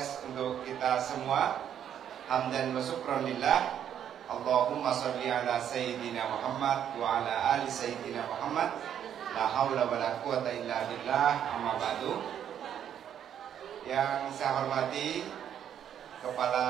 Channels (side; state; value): left; quieter; 9.5 dB